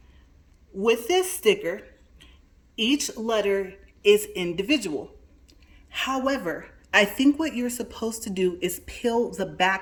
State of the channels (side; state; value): both; identical; correlation 1.00